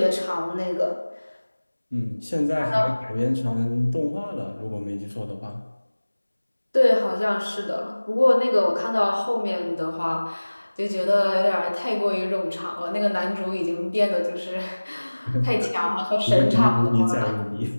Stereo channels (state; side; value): inverted; both; correlation -1.00